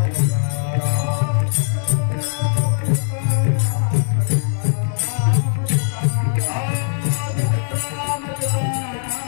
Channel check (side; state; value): right; silent; digital silence